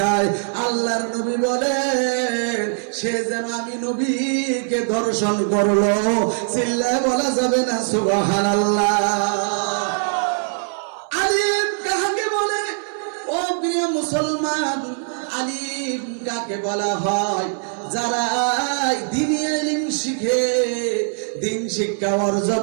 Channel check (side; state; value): left; silent; 63 dB below the other